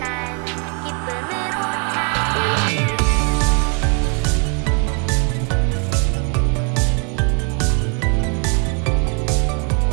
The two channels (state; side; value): quieter; left; 39.1 dB